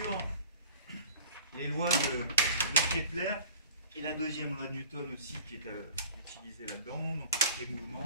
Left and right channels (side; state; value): both; inverted; correlation -0.44